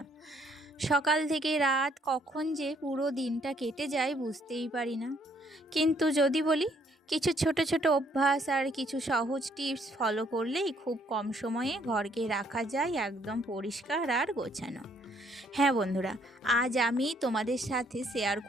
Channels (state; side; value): normal; both; correlation 0.67